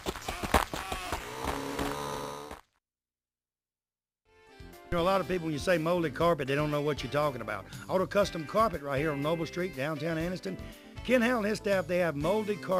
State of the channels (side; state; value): both; identical; correlation 1.00